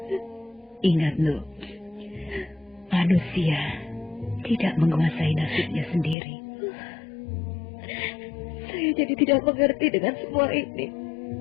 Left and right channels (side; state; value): right; drops out; at 6.2 s